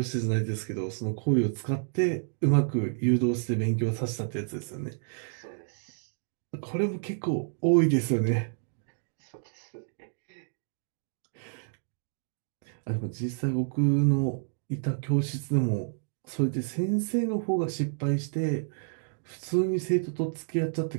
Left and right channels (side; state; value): left; silent; digital silence